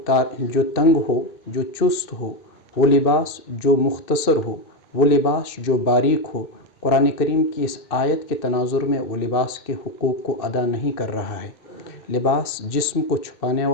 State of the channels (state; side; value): late; right; 2.6 ms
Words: ہو، جو چست ہو، وہ لباس جو مختصر ہو، وہ لباس جو باریک ہو، قرآن کریم کی اس آیت کے تناظر میں وہ لباس کے حقوق کو ادا نہیں کر رہا ہے۔ لباس جسم کو چھپانے